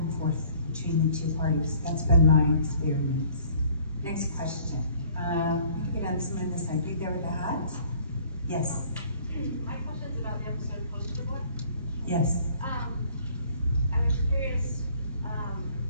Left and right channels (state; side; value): inverted; both; correlation -0.56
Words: forth between the two parties. That's been my experience. Next question. Get on someone on this side. Big there with the hat? Yes. My question is about the episode Poster Boy. Yes. I was curious,